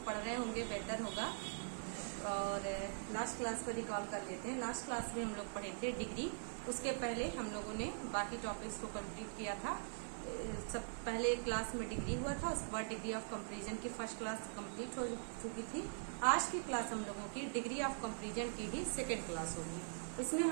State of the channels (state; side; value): silent; left; digital silence